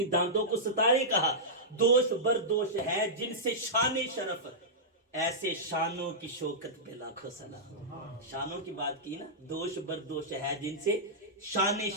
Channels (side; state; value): both; normal; correlation -0.13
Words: دانتوں کو ستارے کہا. دوش بردوش ہے جن سے شان شرف، ایسے شانوں کی شوکت پہ لاکھوں سلام. شانوں کی بات کی نا، دوش بردوش ہے جن سے شان